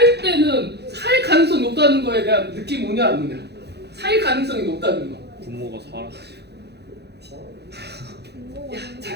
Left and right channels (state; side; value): late; left; 0.48 ms